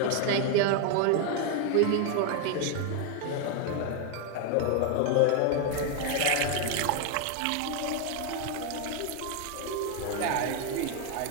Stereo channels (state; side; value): different; both; correlation 0.01